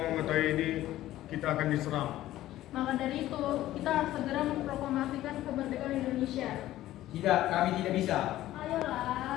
mengetahui ini, kita akan diserang. Maka dari itu, kita harus segera memproklamasikan kemerdekaan Indonesia. Tidak, kami tidak bisa.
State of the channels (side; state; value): right; quieter; 14.6 dB